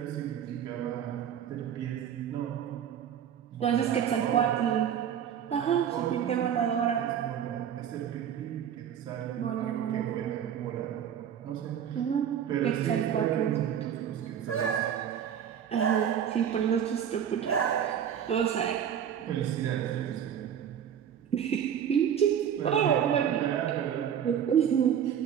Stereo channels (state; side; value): quieter; left; 9.0 dB